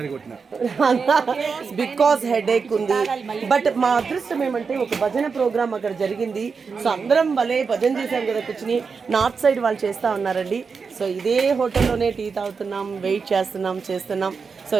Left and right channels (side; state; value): left; quieter; 5.3 dB